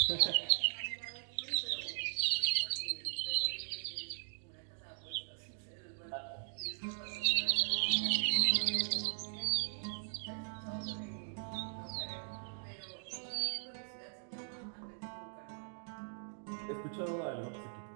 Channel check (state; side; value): silent; left; digital silence